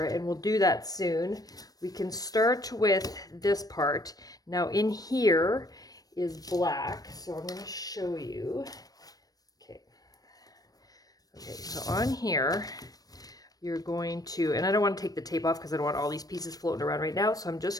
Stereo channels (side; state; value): right; late; 0.18 ms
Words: and we'll do that soon. We can start with this part. Now in here is black, so I'm going to show you. Okay, so on here, you're going to, and I don't want to take the tape off because I don't want all these pieces floating around right now, so I'm